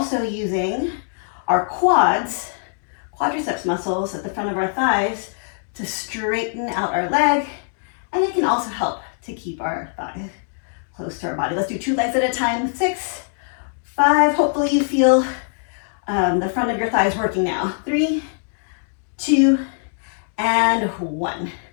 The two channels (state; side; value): silent; right; digital silence